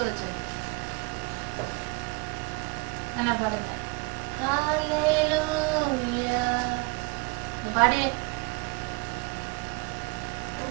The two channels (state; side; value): quieter; left; 28.6 dB